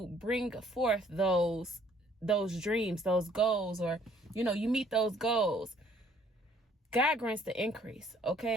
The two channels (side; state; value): both; normal; correlation 0.61